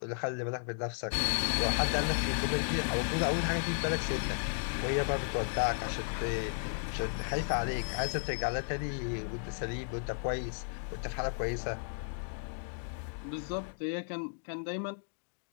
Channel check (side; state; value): right; silent; digital silence